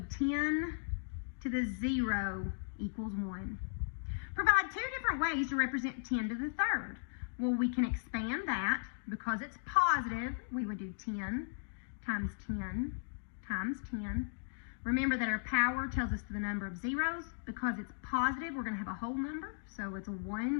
10 to the 0 equals 1. Provide two different ways to represent 10 to the third. Well, we can expand that. Because it's positive, we would do 10 times 10 times 10. Remember that our power tells us the number of zeros. Because it's positive, we're going to have a whole number. So it's a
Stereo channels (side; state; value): right; silent; digital silence